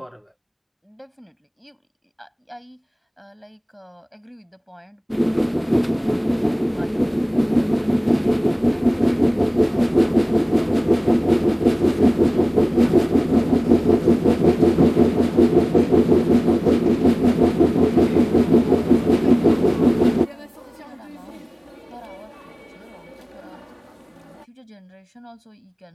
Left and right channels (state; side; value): identical; both; correlation 1.00